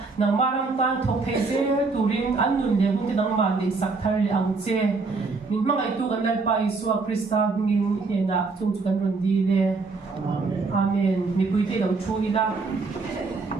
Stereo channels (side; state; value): left; quieter; 4.1 dB